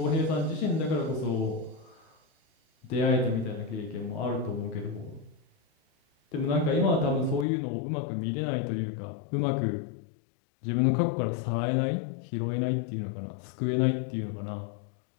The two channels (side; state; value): right; drops out; at 7.5 s